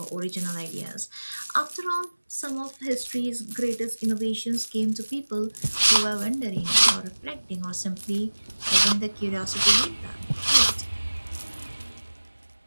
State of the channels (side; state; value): both; inverted; correlation -1.00